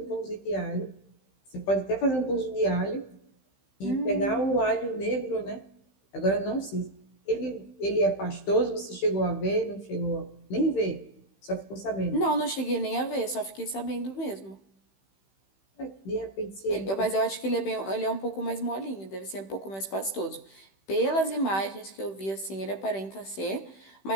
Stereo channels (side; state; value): right; late; 15 ms